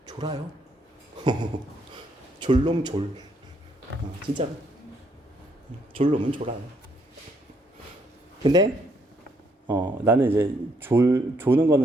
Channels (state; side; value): normal; both; correlation 0.72